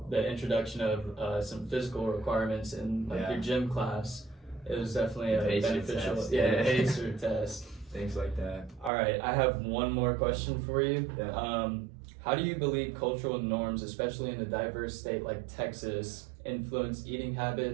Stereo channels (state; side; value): drops out; left; at 8.9 s